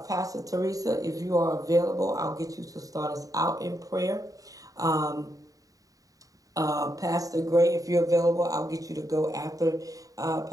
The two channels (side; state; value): left; late; 0.17 ms